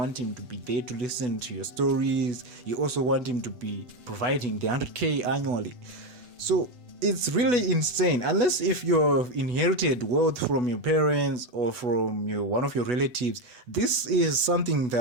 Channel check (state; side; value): late; left; 8.1 ms